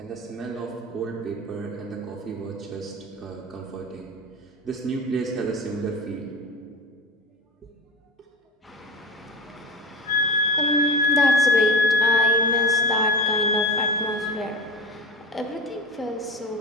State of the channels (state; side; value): normal; both; correlation 0.27